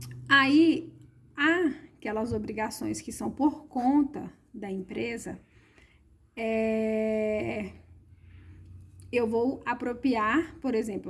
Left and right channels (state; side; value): identical; both; correlation 1.00